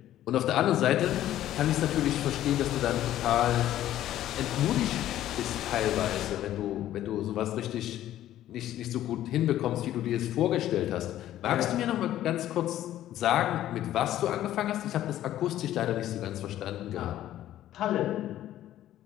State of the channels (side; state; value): right; quieter; 12.9 dB